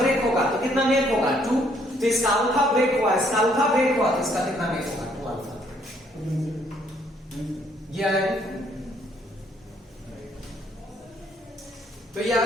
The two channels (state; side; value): normal; both; correlation 0.67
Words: होगा तो कितना मेक होगा? 2। तो इसका अल्फा ब्रेक हुआ, इसका अल्फा ब्रेक हुआ, तो इसका कितना मेक होगा? 2 अल्फा। ये आएगा, तो ये आ